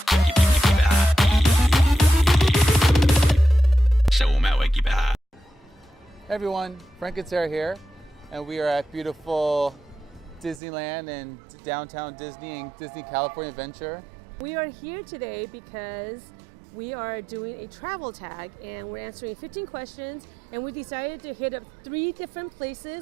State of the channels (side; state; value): left; drops out; at 10.6 s